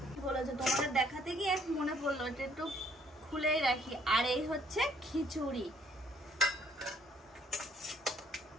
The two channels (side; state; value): both; normal; correlation 0.64